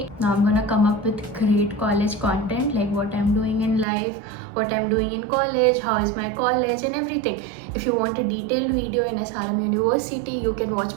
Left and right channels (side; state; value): left; drops out; at 3.9 s